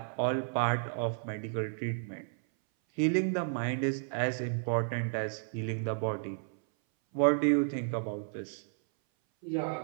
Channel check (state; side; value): silent; left; 56 dB below the other